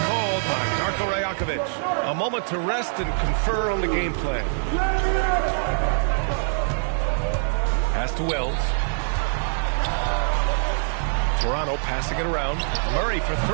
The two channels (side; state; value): left; silent; digital silence